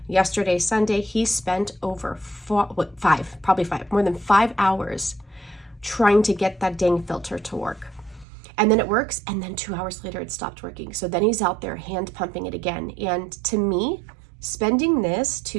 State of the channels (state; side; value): drops out; left; at 8.2 s